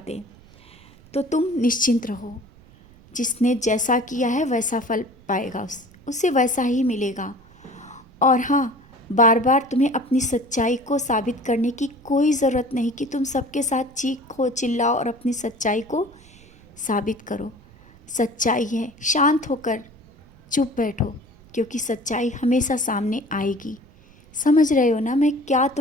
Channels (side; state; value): right; noise; rumble, 25 dB below the sound